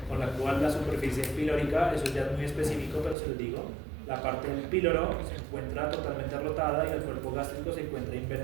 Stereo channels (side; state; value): left; drops out; at 3.2 s